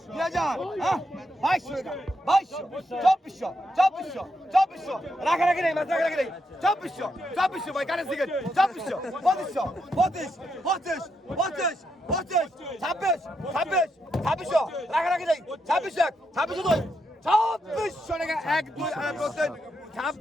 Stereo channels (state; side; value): normal; both; correlation 0.81